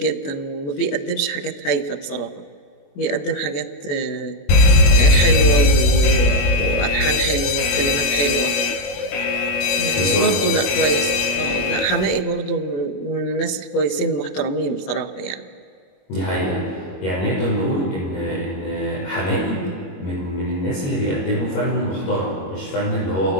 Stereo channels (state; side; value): late; right; 21 ms